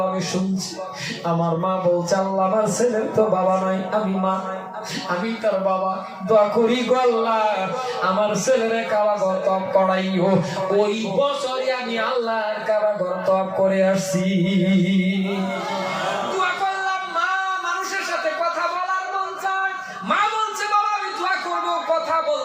আমি শুনছি আমার মা বলছে আল্লাহ আমার ছেলের তো বাবা নাই, আমি মা আমি তার বাবা, দোয়া করি গো আল্লাহ আমার ছেলের কারাগার তপ করাইও। ওই বছরই আমি আল্লাহর কারাগার তপ করে আসছি। দোয়া করলাম মা মানুষের সাথে কথা বলার মন চায়, মা বলছে বাবা আমি দোয়া করব, কথা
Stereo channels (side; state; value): both; identical; correlation 1.00